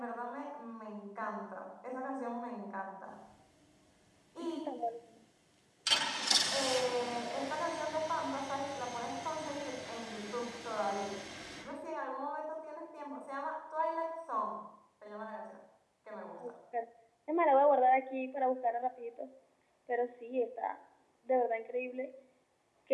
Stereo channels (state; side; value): identical; both; correlation 1.00